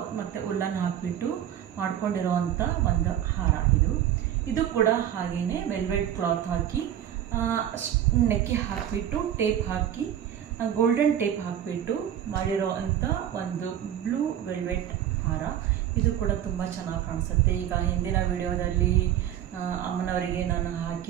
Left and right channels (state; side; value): quieter; left; 10.7 dB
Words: ಮತ್ತು ಉಲ್ಲನ್ ಹಾಕಿಬಿಟ್ಟು ಮಾಡ್ಕೊಂಡಿರೋವಂಥ ಒಂದು ಹಾರ. ಇದು ಕೂಡ ಹಾಗೆಯೇ ವೆಲ್ವೆಟ್ ಕ್ಲಾತ್ ಹಾಕಿ ನೆಕ್ಕಿ ಹಾಕಿಬಿಟ್ಟು ಟೇಪ್ ಹಾಕಿ ಗೋಲ್ಡನ್ ಟೇಪ್ ಹಾಕಿಬಿಟ್ಟು ಮಾಡಿರೋ ಅಂಥ ಒಂದು ಬ್ಲೂ ವೆಲ್ವೆಟ್ ಹಾರ. ಇದು ಕೂಡ ತುಂಬ ಚೆನ್ನಾಗಿ ಕಾಣಿಸುತ್ತೆ. ಈಗ ಹಿಂದಿನ ವಿಡಿಯೋದಲ್ಲಿ ಅಮ್ಮನವರಿಗೆ ನಾನು